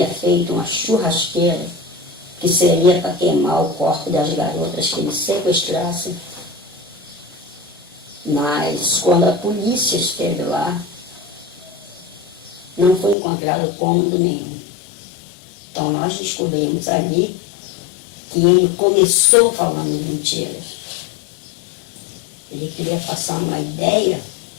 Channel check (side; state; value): right; drops out; at 13.2 s